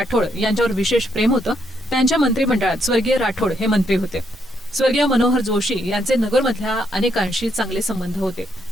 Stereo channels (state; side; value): normal; both; correlation 0.75